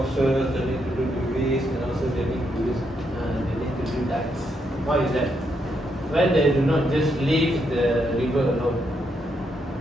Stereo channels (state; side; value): normal; both; correlation 0.78